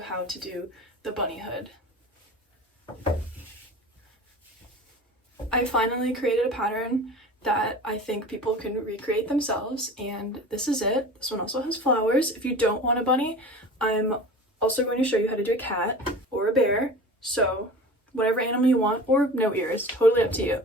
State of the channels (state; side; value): normal; both; correlation 0.37